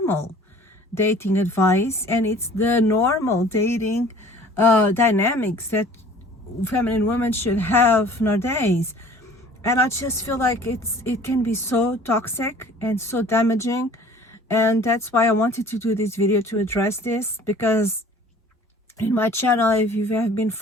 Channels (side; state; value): both; normal; correlation 0.49